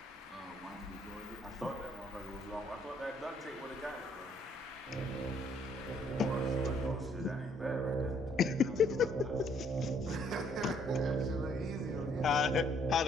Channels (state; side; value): normal; both; correlation 0.65